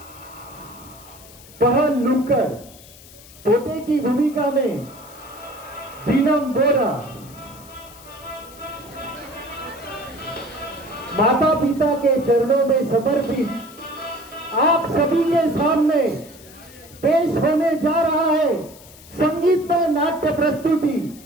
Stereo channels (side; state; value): left; noise; hiss, 21 dB below the sound